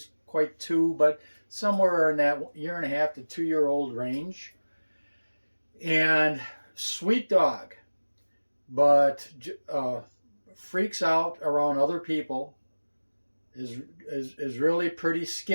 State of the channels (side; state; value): both; inverted; correlation -1.00